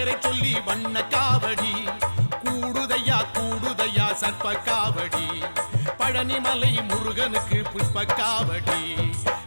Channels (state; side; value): inverted; both; correlation -1.00